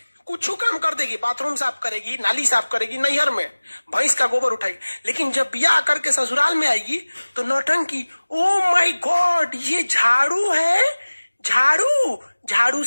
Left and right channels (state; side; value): inverted; both; correlation -1.00